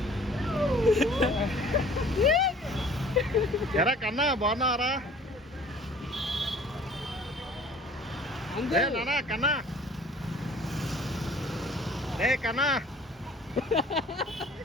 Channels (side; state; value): both; normal; correlation 0.51